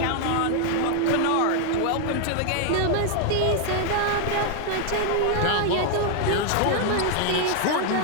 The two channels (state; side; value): different; both; correlation 0.00